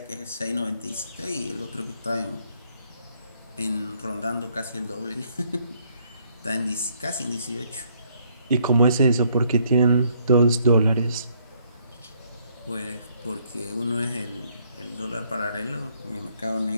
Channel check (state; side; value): inverted; both; correlation -0.68